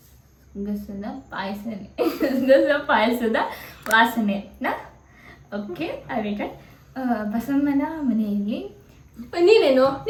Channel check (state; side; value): identical; both; correlation 1.00